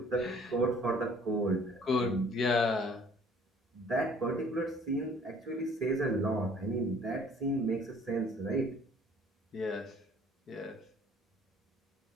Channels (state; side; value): normal; both; correlation 0.55